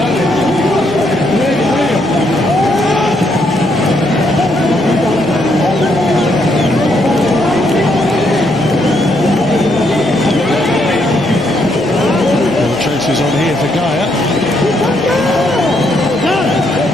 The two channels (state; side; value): noise; left; hum, 21 dB below the sound